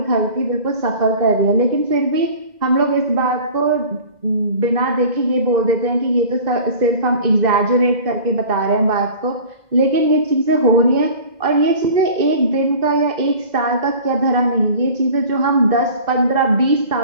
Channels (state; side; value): late; left; 2.0 ms